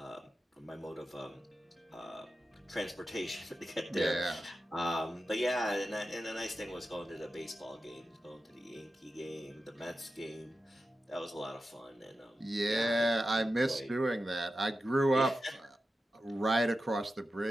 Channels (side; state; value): both; normal; correlation 0.91